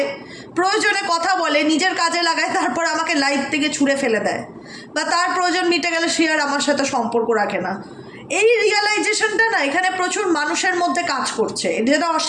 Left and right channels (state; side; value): identical; both; correlation 1.00